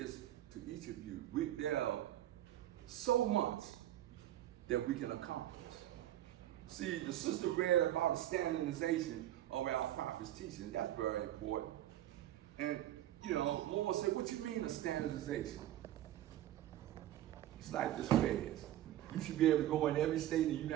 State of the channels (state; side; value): quieter; left; 13.1 dB